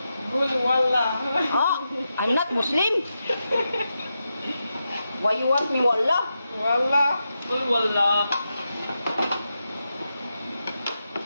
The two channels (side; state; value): both; inverted; correlation -0.88